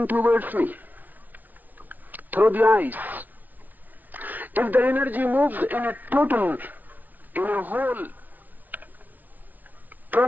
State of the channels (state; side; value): late; left; 0.080 ms